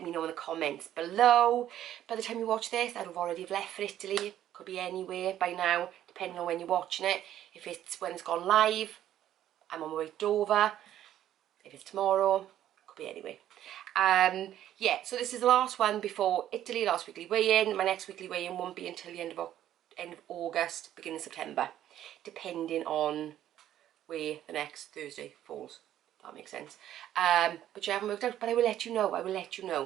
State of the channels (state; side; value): quieter; left; 11.8 dB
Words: me know in the comments below. By the time you watch this, I'd have already left for Italy. Could be anywhere by now, depending on when you're watching it. If it's when it's gone live, I'm on my way to Dover. If it's tomorrow, could be anywhere. Yeah, so this is the last one before Italy, last weekly weigh-in. My next weekly weigh-in won't be until the end of August, beginning of September, depending on where the next Thursday falls. That makes sense. But you haven't worked out, but I will let you know. I will let you